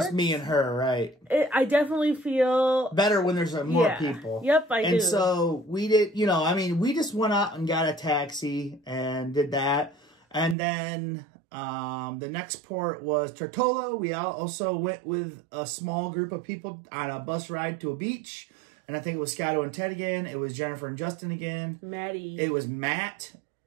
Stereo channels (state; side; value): drops out; left; at 10.6 s